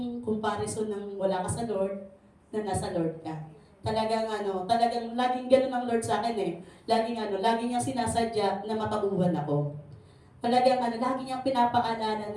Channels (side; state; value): both; identical; correlation 1.00